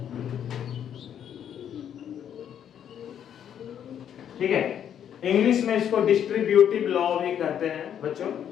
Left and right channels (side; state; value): right; quieter; 9.3 dB